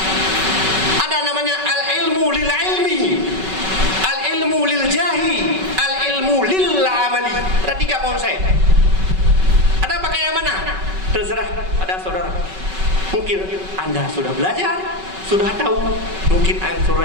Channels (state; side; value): late; left; 5.3 ms